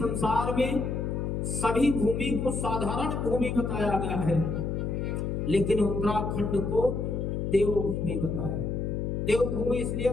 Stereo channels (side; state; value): left; noise; hum, 1 dB below the sound